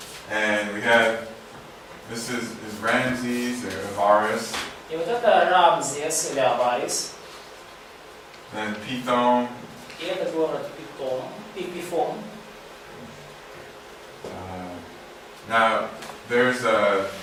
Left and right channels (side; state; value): both; identical; correlation 1.00